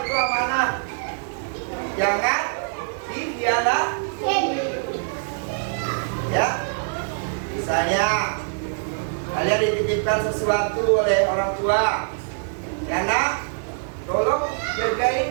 itu amanah. Jangan dikhianati. Ya, misalnya kalian dititipkan sesuatu oleh orang tua, ya nak, tolong jagain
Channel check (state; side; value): silent; left; digital silence